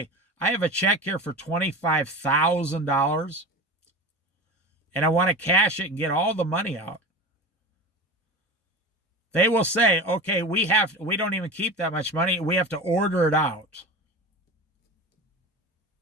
I have a check here for $25,000 and I want to cash it and get all the money out, they will say, okay, we don't even keep that much money. We have to order it out.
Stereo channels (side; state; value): both; normal; correlation 0.30